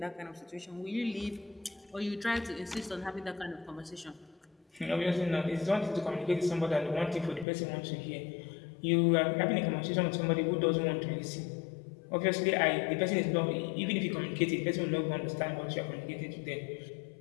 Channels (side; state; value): right; drops out; at 7.5 s